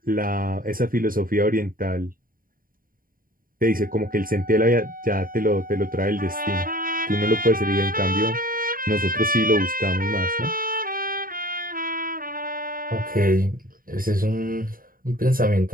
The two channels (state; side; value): late; left; 0.41 ms